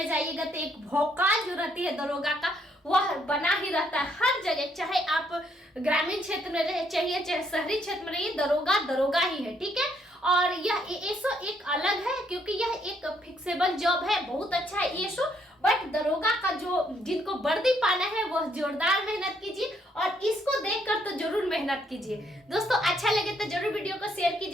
जाइएगा तो एक भौकाल जो रहती है दरोगा का वह बना ही रहता है हर जगह, चाहे आप ग्रामीण क्षेत्र में रहे चाहे शहरी क्षेत्र में रहिए, दरोगा ही है, ठीक है। और यह एएसओ एक अलग है क्योंकि यह एक फिक्सेबल जॉब है, बहुत अच्छा है एएसओ, बट दरोगा का जो जिनको वर्दी पाना है वह जोरदार मेहनत कीजिए और इसको देखकर तो जरूर मेहनत कीजिए। दोस्तों अच्छा लगे तो जरूर वीडियो को शेयर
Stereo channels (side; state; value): both; normal; correlation 0.71